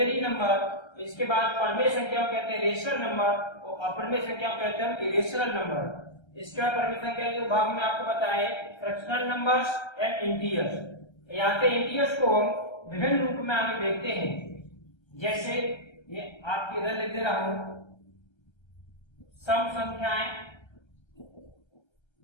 नंबर, इसके बाद परिमेय संख्या को कहते हैं रेशनल नंबर और अपरिमेय संख्या को कहते हैं इरेशनल नंबर। इसके बाद परिमेय संख्या के भाग में आपको बताए फ्रैक्शनल नंबर्स एंड इंटीजर्स। यहाँ पे इंटीजर्स को हम विभिन्न रूप में आगे देखते हैं। जैसे ये आपके इधर लिख दे रहा हूं, सम संख्याएं,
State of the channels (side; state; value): right; late; 1.3 ms